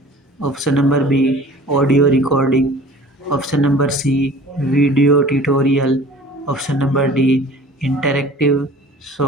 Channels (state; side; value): normal; both; correlation 0.46